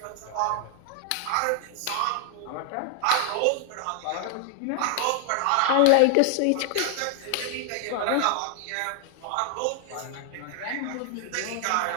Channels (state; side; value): different; both; correlation 0.00